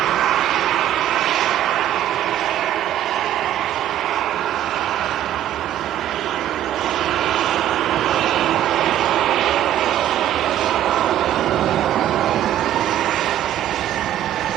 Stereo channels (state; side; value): quieter; left; 11.9 dB